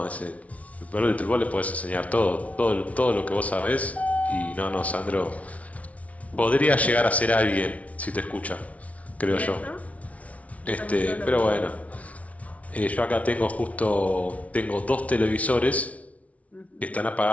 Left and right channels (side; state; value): right; late; 0.067 ms